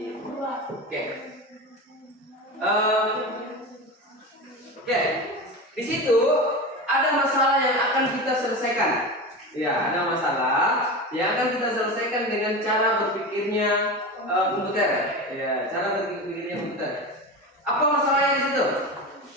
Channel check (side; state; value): both; normal; correlation 0.25